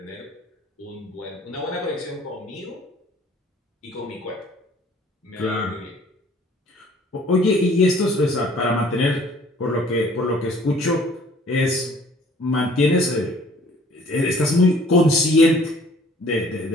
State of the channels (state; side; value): normal; both; correlation 0.55